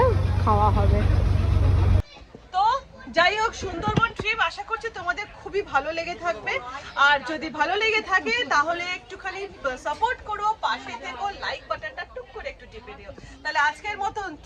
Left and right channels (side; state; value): both; identical; correlation 1.00